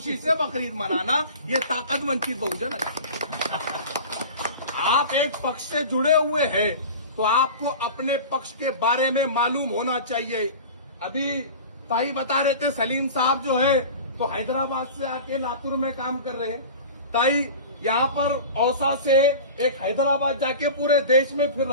से बकरीद मनाना, ये ताकत वंचित बहुजन आघाड़ी। आप एक पक्ष से जुड़े हुए हैं तो आपको अपने पक्ष के बारे में मालूम होना चाहिए। अभी ताई बता रहे थे सलीम साहब जो है तो हैदराबाद से आके लातूर में काम कर रहे हैं। ताई यहाँ पर औसा से एक हैदराबाद जाके पूरे देश में फिर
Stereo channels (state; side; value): inverted; both; correlation -0.35